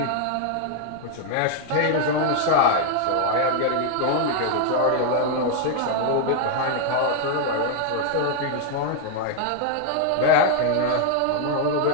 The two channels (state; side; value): different; both; correlation 0.00